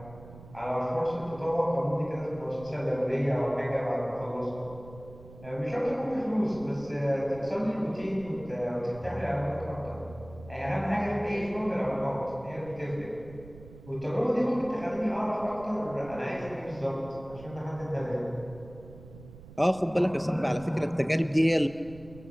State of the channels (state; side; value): noise; right; rumble, 18 dB below the sound